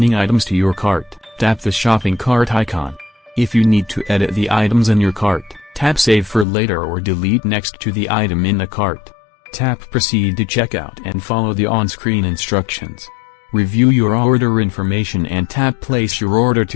items to your cart, tap the shopping cart icon. If you need to edit the items in your cart, tap Save for later or delete next to the item in the cart. Tap Proceed to checkout and follow the on-screen instructions. Review your order information and tap Place your order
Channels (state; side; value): drops out; right; at 6.5 s